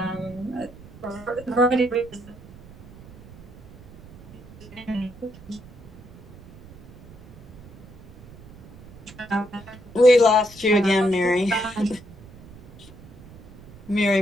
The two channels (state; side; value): noise; right; rumble, 20 dB below the sound